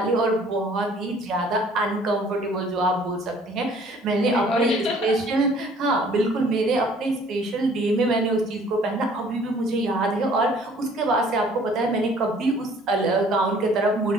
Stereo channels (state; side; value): normal; both; correlation 0.55